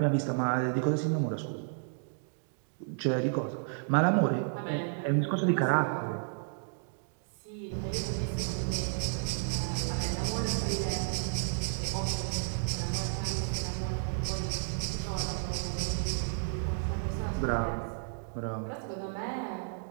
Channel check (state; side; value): silent; left; digital silence